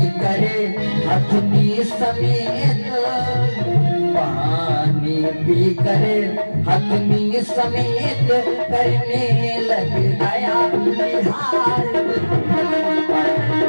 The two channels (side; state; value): both; inverted; correlation -1.00